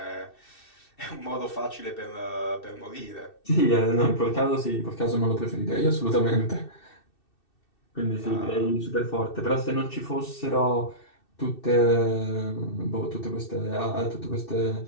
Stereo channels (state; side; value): late; right; 2.6 ms